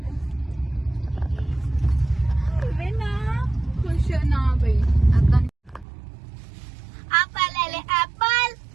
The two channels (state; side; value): drops out; left; at 5.9 s